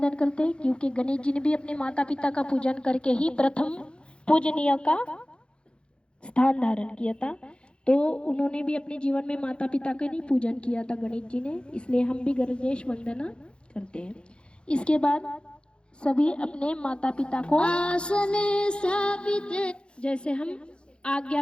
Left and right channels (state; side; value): late; right; 0.055 ms